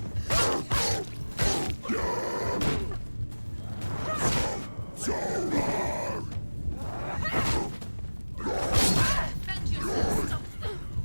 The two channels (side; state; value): both; inverted; correlation -1.00